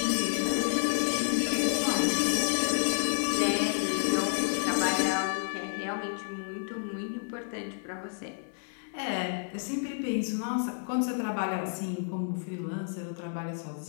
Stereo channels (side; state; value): right; silent; 58 dB below the other